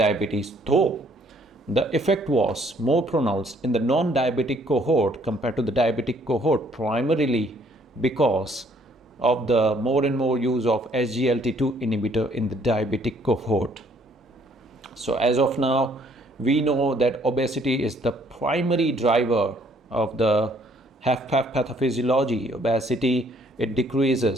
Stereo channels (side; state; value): both; normal; correlation 0.64